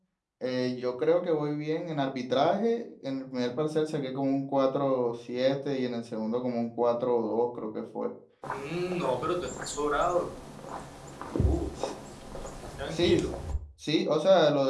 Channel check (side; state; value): both; identical; correlation 1.00